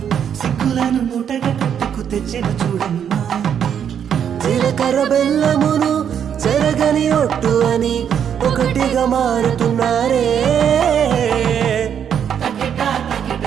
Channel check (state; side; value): quieter; left; 8.5 dB